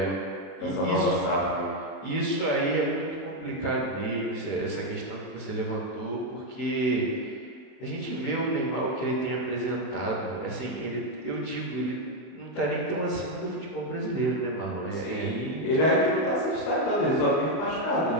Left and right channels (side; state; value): right; late; 31 ms